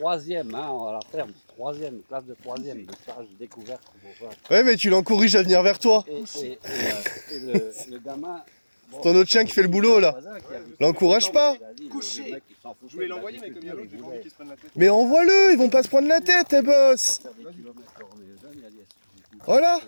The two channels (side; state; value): both; inverted; correlation -1.00